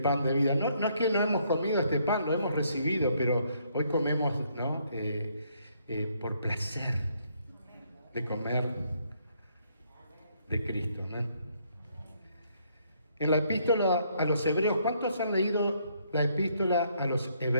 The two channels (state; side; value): inverted; both; correlation -0.70